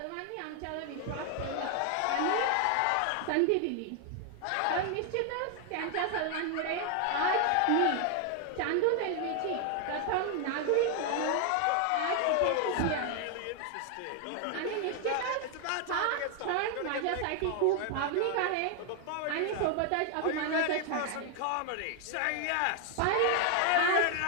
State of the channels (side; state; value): both; different; correlation 0.00